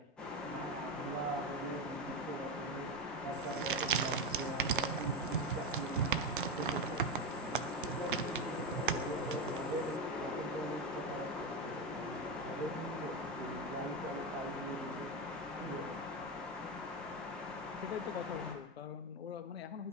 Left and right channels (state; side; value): normal; both; correlation 0.14